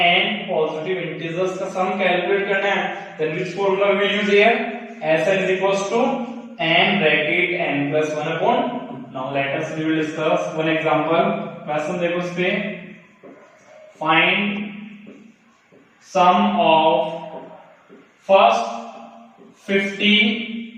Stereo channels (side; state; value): both; identical; correlation 1.00